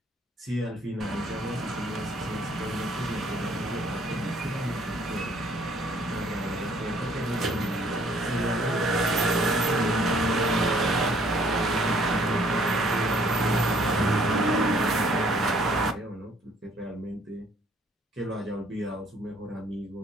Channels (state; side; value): normal; both; correlation 0.61